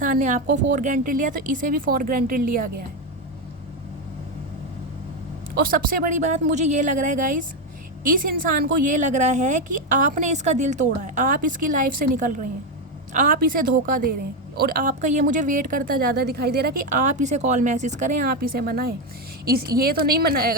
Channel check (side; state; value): both; normal; correlation 0.09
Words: ने आपको फॉर ग्रांटेड लिया, तो इसे भी फॉर ग्रांटेड लिया गया है। और सबसे बड़ी बात मुझे ये लग रहा है गाइस, इस इंसान को ये लग रहा है कि आपने इसका दिल तोड़ा है, आप इसकी लाइफ से निकल रहे हैं, आप इसे धोखा दे रहे हैं, और आपका ये मुझे वेट करता ज़्यादा दिखाई दे रहा है कि आप इसे कॉल मैसेज करें, आप इसे मनाएं। ये तो नहीं